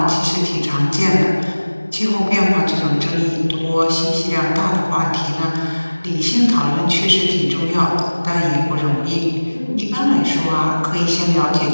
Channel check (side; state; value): both; inverted; correlation -1.00